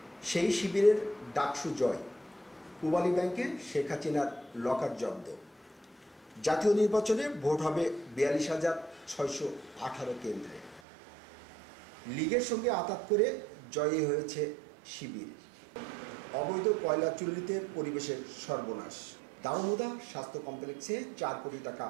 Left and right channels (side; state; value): left; drops out; at 10.8 s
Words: সেই শিবিরের ডাকসু জয়, পূবালী ব্যাংকে শেখ হাসিনার লকার জব্দ। জাতীয় নির্বাচনে ভোট হবে 42,618 কেন্দ্রে। লীগের সঙ্গে আঁতাত করে জয়ী হয়েছে শিবির। অবৈধ কয়লা চুল্লিতে পরিবেশের সর্বনাশ। দারুমুদা স্বাস্থ্য কমপ্লেক্সে 4 কোটি টাকা